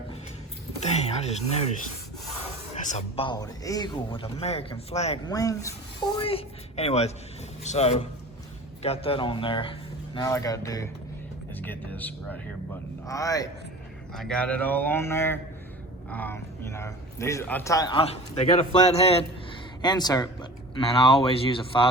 dang, I just noticed, that's a bald eagle with American flag wings, boy. Anyways, so got that on there. Now all I gotta do is get this right here buttoned. All right, I got it all on there. You know, these they got a flat head insert, but man, I always use a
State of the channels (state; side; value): normal; both; correlation 0.39